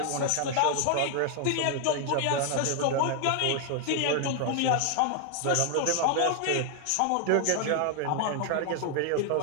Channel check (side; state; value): both; different; correlation 0.00